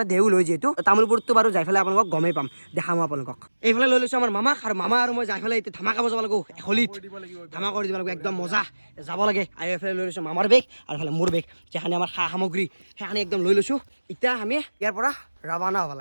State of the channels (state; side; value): inverted; both; correlation -1.00